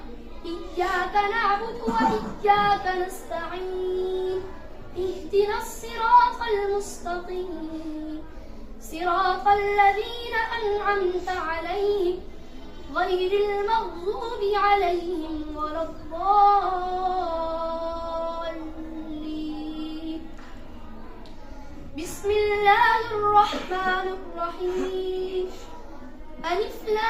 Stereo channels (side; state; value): both; identical; correlation 1.00